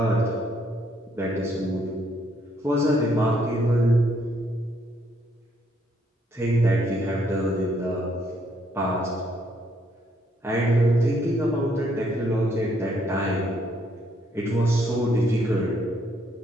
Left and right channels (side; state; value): both; normal; correlation 0.71